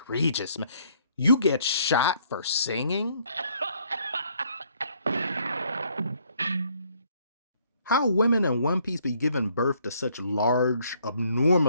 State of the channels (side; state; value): both; inverted; correlation -0.66